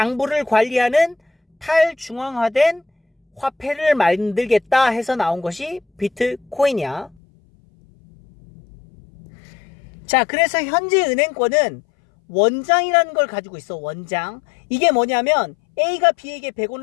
관리하는 탈중앙화된 화폐를 만들겠다 해서 나온 것이 비트코인이야. 자, 그래서 현재 은행권은 원장이라는 걸 가지고 있어. 원장. 이게 뭐냐면 A가 B에게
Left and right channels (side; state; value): right; drops out; at 7.2 s